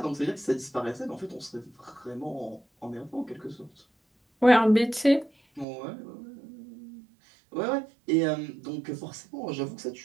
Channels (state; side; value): drops out; left; at 5.7 s